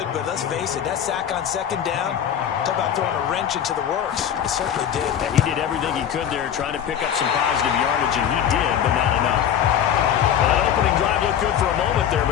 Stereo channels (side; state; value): right; quieter; 9.3 dB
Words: But let's face it, that sack on 2nd down, talk about throwing a wrench into the works. It certainly did. Yeah, he did everything he could there trying to pick up some positive yardage, and he did, but not enough. That opening drive looked good for a moment there,